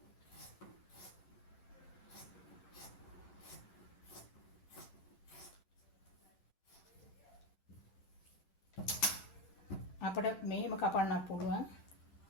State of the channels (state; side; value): late; right; 10 ms